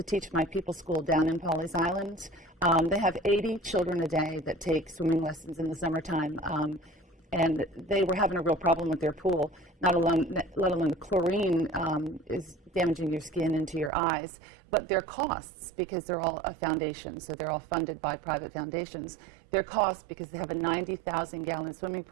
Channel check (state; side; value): drops out; left; at 13.9 s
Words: Teach My People School down in Pawleys Island, they have 80 children a day that take swimming lessons in the summertime, and they were having a real problem with their pool. Let alone the chlorine is damaging your skin into your eyes, but their costs, because they're all a foundation, so they're all funded by private foundations, their costs, because they have a 90,000-gallon swimming